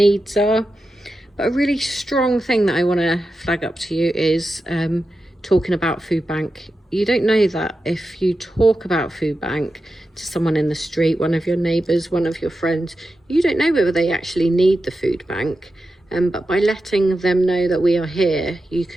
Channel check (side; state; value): both; normal; correlation 0.91